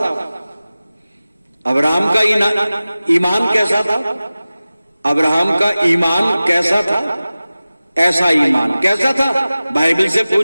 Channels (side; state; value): both; inverted; correlation -0.97